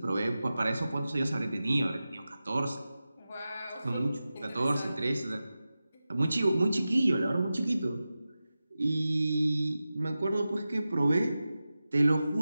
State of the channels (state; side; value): inverted; both; correlation -0.94